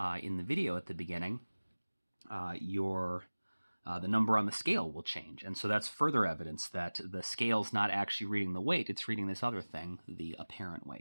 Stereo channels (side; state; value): both; inverted; correlation -1.00